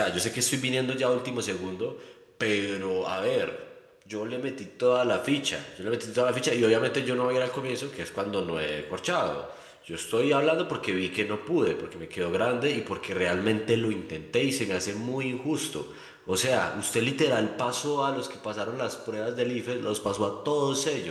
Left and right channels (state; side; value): identical; both; correlation 1.00